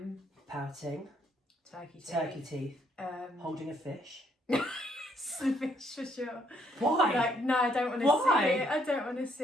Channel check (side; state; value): both; normal; correlation 0.69